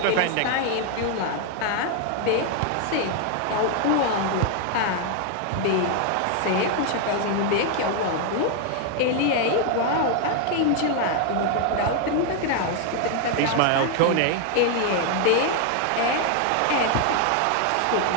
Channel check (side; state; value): both; different; correlation 0.00